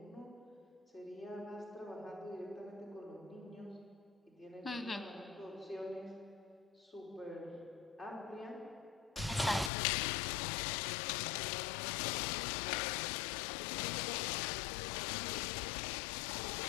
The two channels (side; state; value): right; drops out; at 9.7 s